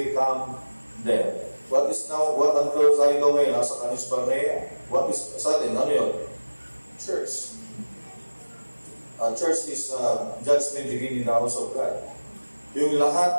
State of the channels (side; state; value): both; inverted; correlation -1.00